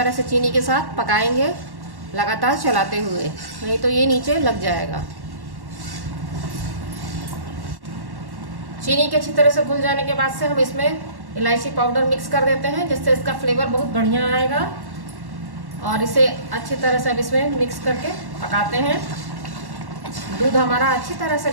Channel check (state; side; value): late; left; 1.1 ms